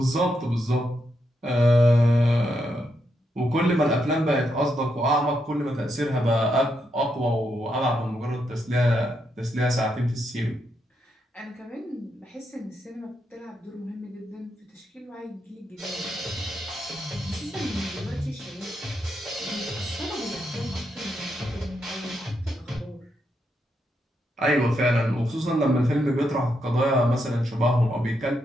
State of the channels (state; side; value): normal; both; correlation 0.81